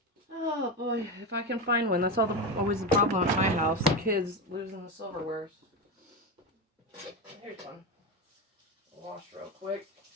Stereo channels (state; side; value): normal; both; correlation 0.17